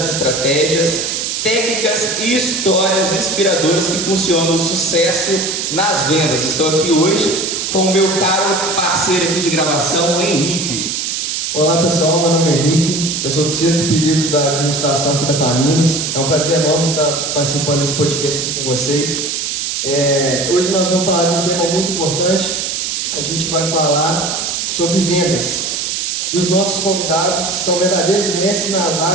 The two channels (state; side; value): noise; right; hiss, 2 dB below the sound